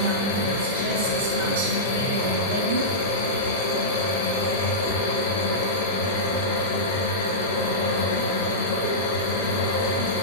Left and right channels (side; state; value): both; normal; correlation -0.14